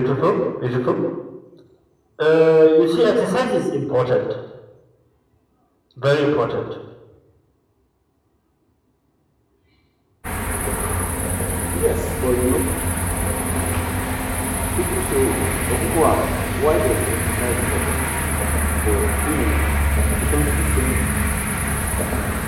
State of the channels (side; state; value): both; identical; correlation 1.00